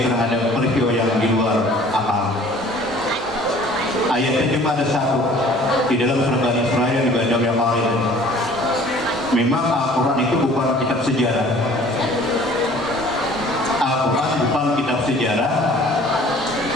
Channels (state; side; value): normal; both; correlation 0.51